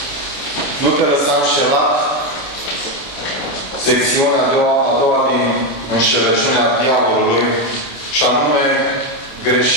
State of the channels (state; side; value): late; right; 28 ms